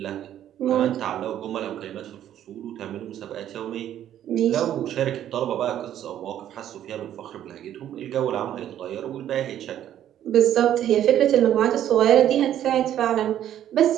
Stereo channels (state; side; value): quieter; left; 11.2 dB